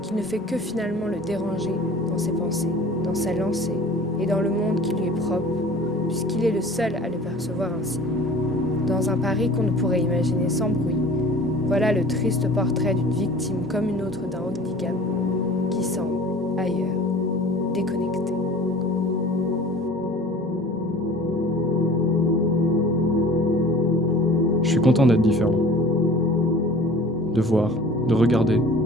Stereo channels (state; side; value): normal; both; correlation 0.44